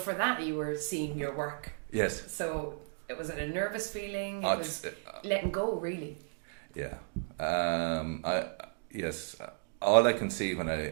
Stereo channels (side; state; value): left; silent; digital silence